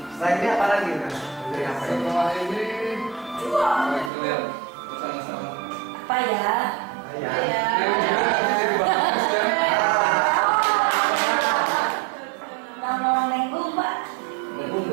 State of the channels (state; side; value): drops out; left; at 4.1 s